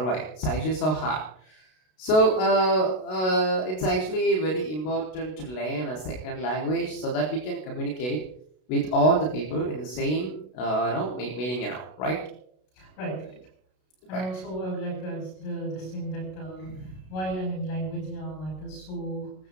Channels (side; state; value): right; late; 32 ms